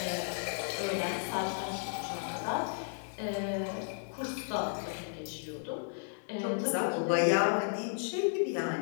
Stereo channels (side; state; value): right; silent; digital silence